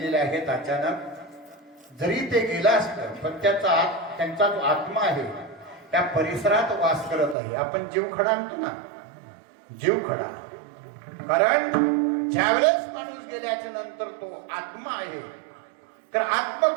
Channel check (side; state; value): left; drops out; at 7.4 s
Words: आहेत अचानक. जरी ते गेला असतं पण त्यांचा जो आत्मा आहे त्या परिसरात वास करत आहे. आपण जीव खडा आणतो ना, जीव खडा. कारण ज्यावेळेस माणूस गेल्याच्या नंतर तो आत्मा आहे, तर